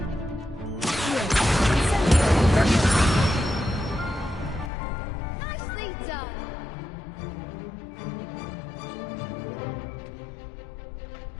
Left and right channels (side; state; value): right; drops out; at 4.7 s